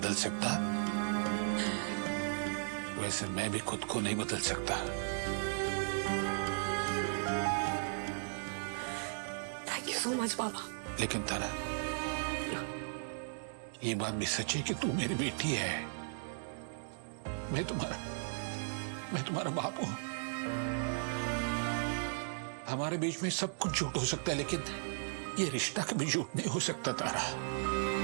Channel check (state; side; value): silent; left; digital silence